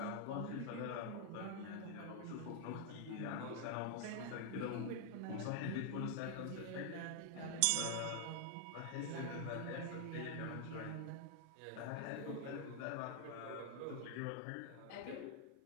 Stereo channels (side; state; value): both; different; correlation 0.00